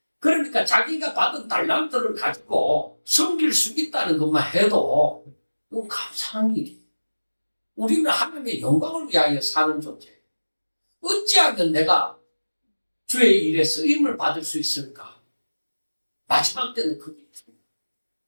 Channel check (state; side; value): inverted; both; correlation -1.00